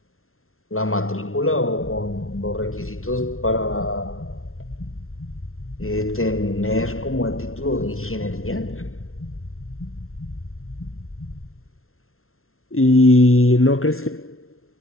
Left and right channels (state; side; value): late; right; 0.62 ms